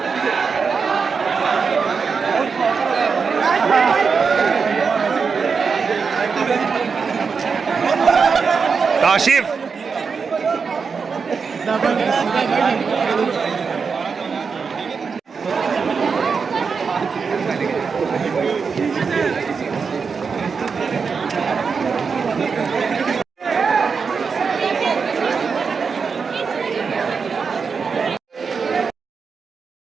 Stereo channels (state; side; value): quieter; left; 5.4 dB